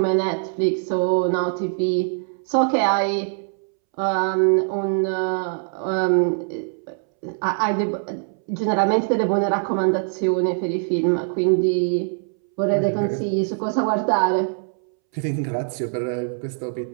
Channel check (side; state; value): left; silent; 64 dB below the other